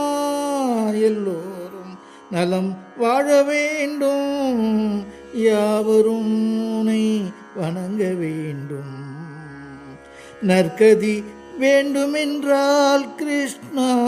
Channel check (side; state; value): both; identical; correlation 1.00